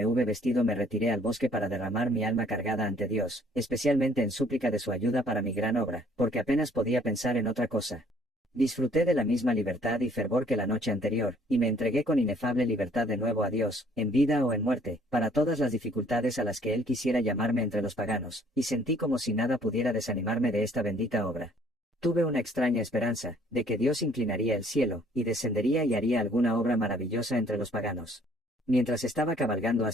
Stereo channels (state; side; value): normal; both; correlation 0.60